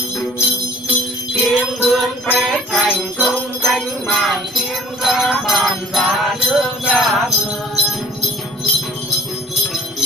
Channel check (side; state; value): both; normal; correlation 0.51